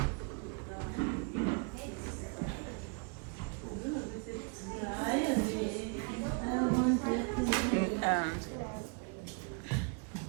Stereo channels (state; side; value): quieter; left; 34.1 dB